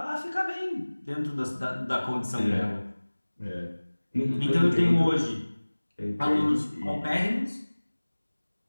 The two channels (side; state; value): both; inverted; correlation -1.00